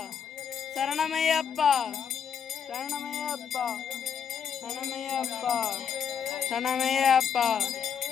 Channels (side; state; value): right; quieter; 7.6 dB